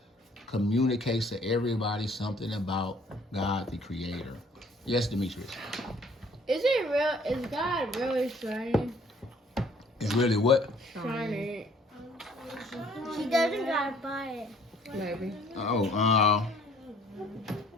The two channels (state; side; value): normal; both; correlation 0.58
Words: communicates to everybody something about God, the creator. Yes, Demetrius? Is it real? Is God really shining? It's really what? Shining. He doesn't gotta buy it. Maybe. Oh, I